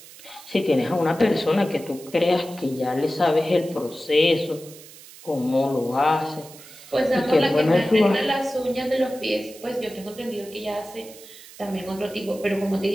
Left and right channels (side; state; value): right; noise; hiss, 19 dB below the sound